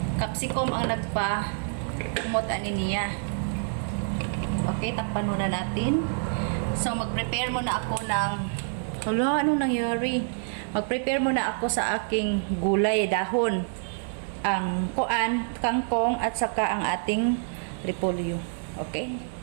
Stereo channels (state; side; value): silent; left; 60 dB below the other